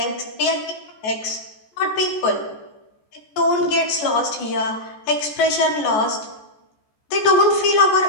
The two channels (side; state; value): right; late; 14 ms